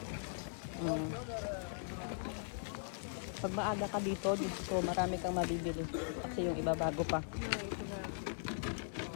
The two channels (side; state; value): right; silent; 51 dB below the other